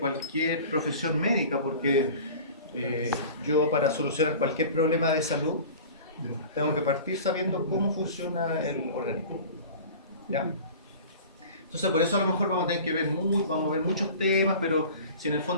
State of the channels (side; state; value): both; inverted; correlation -0.40